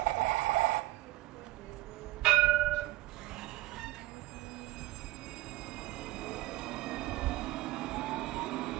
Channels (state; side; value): quieter; left; 17.9 dB